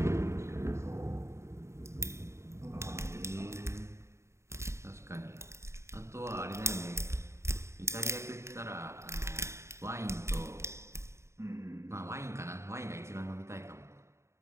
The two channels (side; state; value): left; late; 0.13 ms